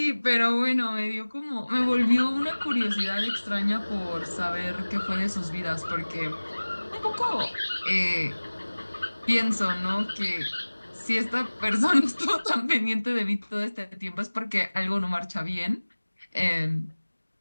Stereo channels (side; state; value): both; inverted; correlation -1.00